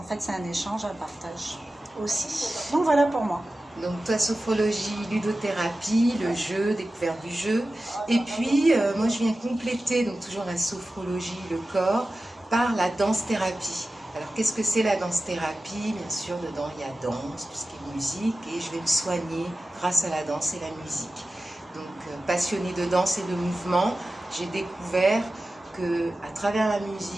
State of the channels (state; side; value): normal; both; correlation 0.95